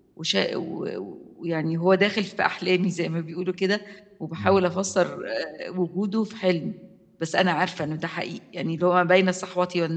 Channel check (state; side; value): identical; both; correlation 1.00